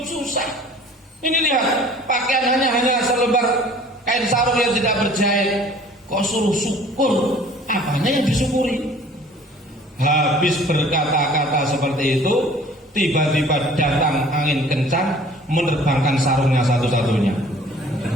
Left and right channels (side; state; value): both; normal; correlation 0.50